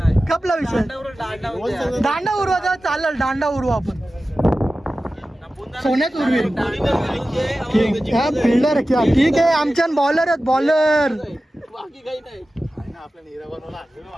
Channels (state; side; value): normal; both; correlation 0.95